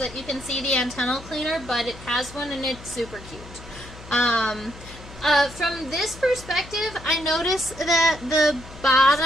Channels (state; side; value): noise; left; hum, 17 dB below the sound